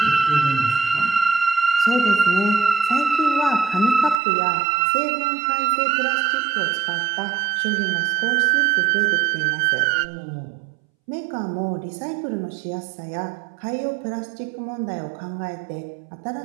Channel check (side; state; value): left; drops out; at 4.2 s